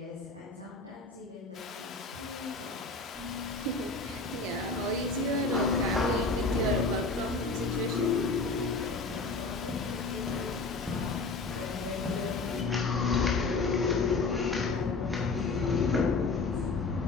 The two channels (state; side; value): quieter; right; 3.7 dB